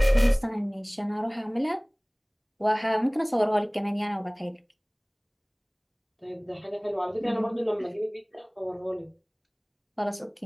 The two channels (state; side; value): identical; both; correlation 1.00